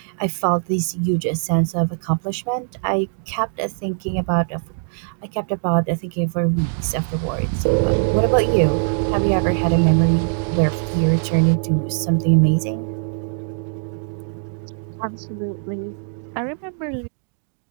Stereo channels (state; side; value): silent; left; digital silence